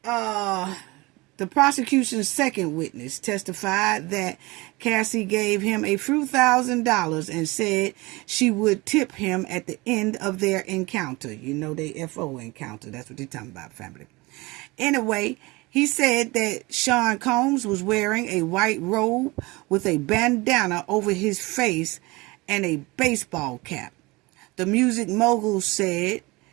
The prosecution's second witness testified that Cassie gave him a few $1,000s and said she would tip him at the end of their encounter. You know, they FO encounter. That's what they're talking about, family. Anyway, he said that Sean Combs was wearing a white robe with a bandana over his face and a baseball cap. The music mogul said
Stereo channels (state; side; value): quieter; left; 23.4 dB